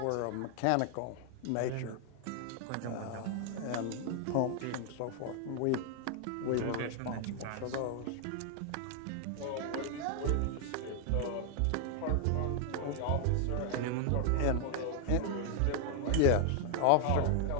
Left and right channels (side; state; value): both; different; correlation 0.00